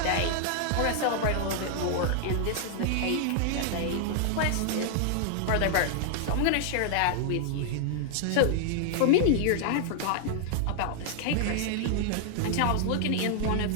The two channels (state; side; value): different; both; correlation -0.01